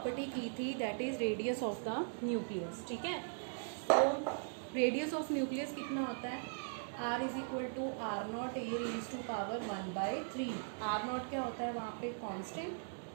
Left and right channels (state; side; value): silent; left; digital silence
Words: की थी that is radius of the nucleus. ठीक है? तो रेडियस ऑफ न्यूक्लियस कितना होता है? R is equal to R naught a raise to power 1/3. R naught क्या होता है वहाँ पे? कांस्टेंट.